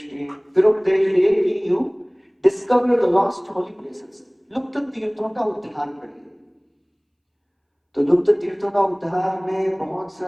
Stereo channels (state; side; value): identical; both; correlation 1.00